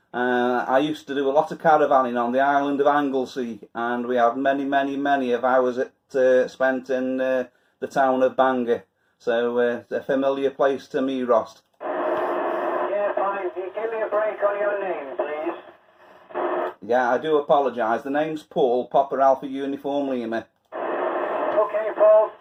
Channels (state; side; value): identical; both; correlation 1.00